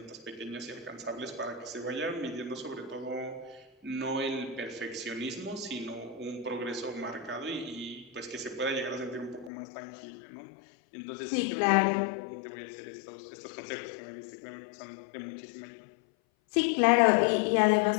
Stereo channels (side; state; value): right; drops out; at 9.5 s